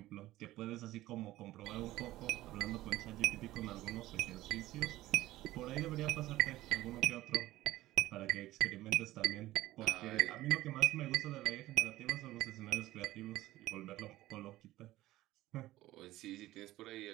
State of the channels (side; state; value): left; quieter; 16.2 dB